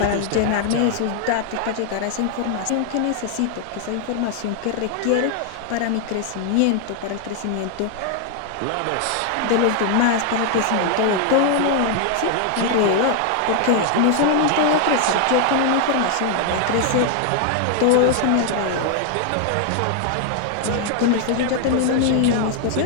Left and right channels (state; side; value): different; both; correlation 0.00